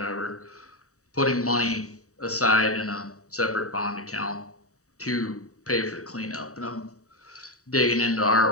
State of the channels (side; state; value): right; late; 0.65 ms